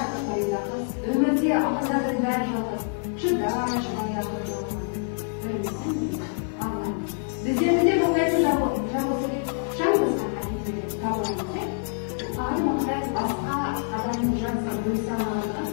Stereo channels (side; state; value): right; silent; 61 dB below the other